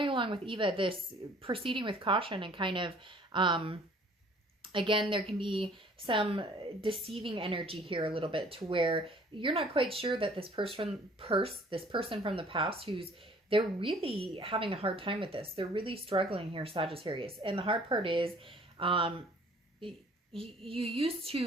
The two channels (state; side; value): normal; both; correlation 0.55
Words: along with Eva, this proceeding with caution, and kind of, again, there can be some deceiving energy here a little bit, to where you're not quite sure that this person from the past, they're really having a hard time with this. They're really struggling here, Sagittarius. And the hard part is, you used